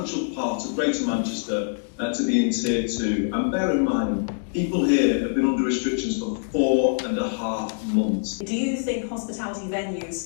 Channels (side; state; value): right; silent; digital silence